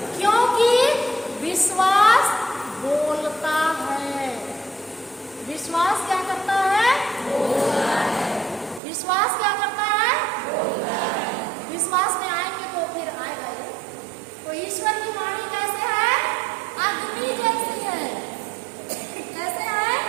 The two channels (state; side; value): drops out; left; at 8.8 s